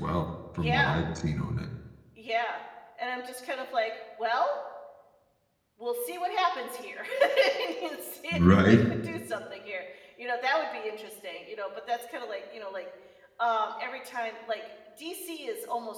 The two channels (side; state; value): both; identical; correlation 1.00